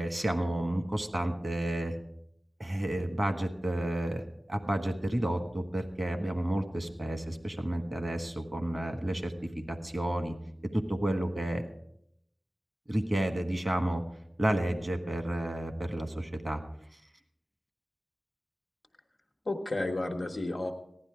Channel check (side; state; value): both; normal; correlation 0.96